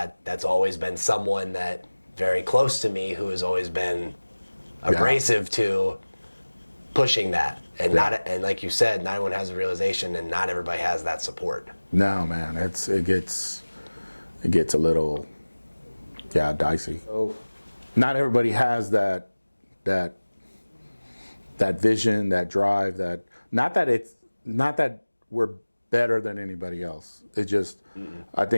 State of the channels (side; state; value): both; inverted; correlation -1.00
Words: always been someone that very close to me who has always been abrasive to pushing that. And and like you said, not everyone has a realization, and not everybody has that support. No, man, it gets a little dicey. So not everybody has that vision, that drive, not that we're better than anybody else. It just I